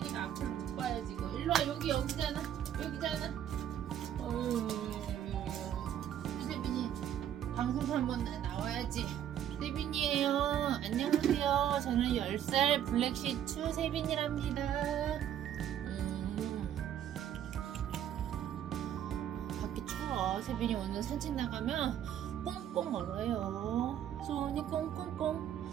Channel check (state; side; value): quieter; left; 10.3 dB